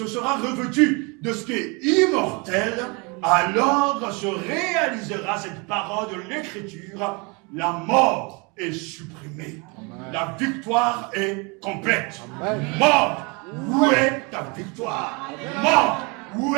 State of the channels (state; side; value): quieter; left; 30.0 dB